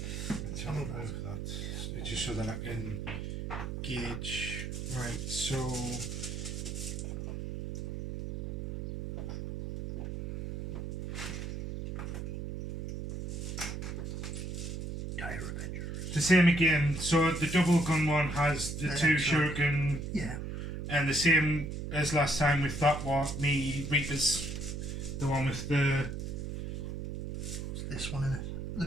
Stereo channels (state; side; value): noise; right; hum, 5 dB below the sound